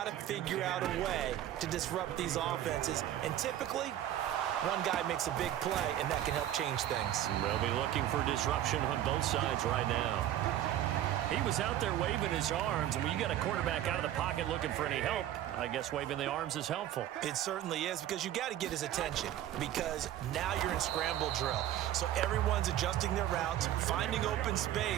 to figure out a way to disrupt these offenses. And typically, one guy makes a big play, and that can help change things. They'll be looking for disruption on both sides right now. He was out there waving his arms, and when you got a quarterback out of the pocket looking for any help, I guess waving the arms is helpful. It certainly is, because you got to get his attention, because now you're in scramble drill. So everyone's adjusting their routes, finding open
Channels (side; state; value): left; quieter; 12.2 dB